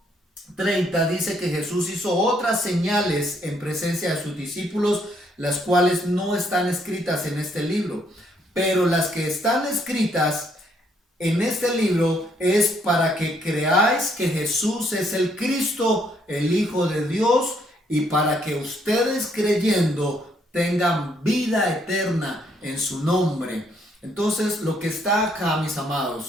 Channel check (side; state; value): both; normal; correlation 0.70